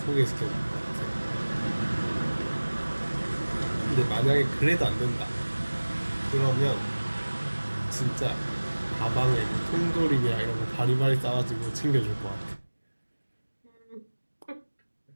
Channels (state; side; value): inverted; both; correlation -1.00